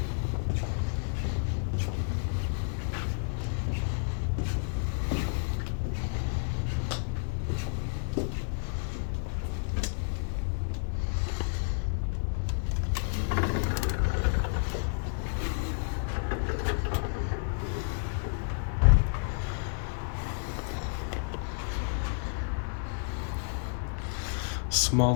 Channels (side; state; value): right; silent; digital silence